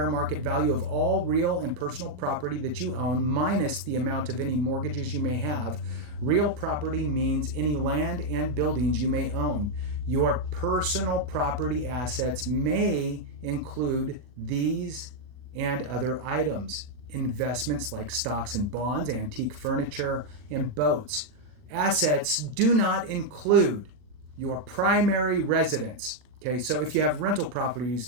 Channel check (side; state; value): left; late; 40 ms